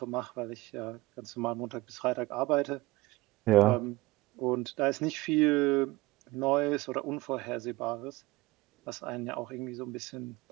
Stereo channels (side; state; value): left; quieter; 20.1 dB